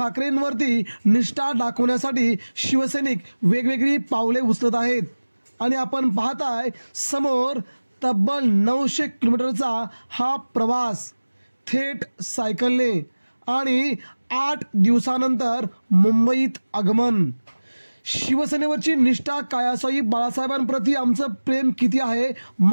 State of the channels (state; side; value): inverted; both; correlation -1.00